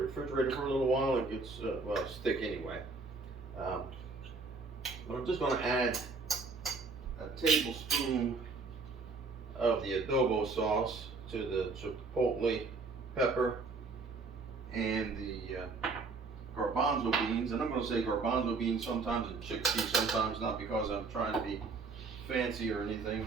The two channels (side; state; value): left; quieter; 4.1 dB